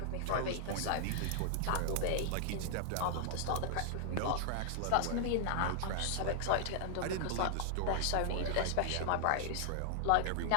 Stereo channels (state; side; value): different; both; correlation -0.01